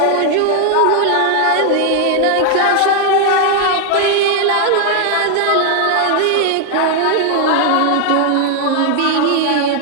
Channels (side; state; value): both; different; correlation 0.00